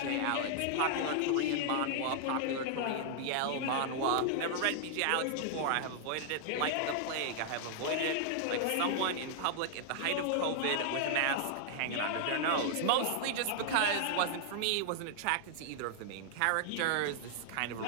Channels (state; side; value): different; both; correlation 0.00